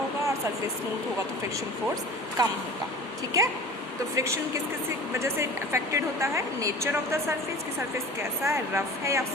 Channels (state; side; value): normal; both; correlation 0.40